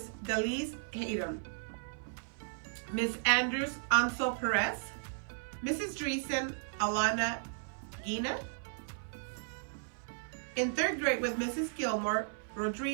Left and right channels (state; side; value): silent; left; 54 dB below the other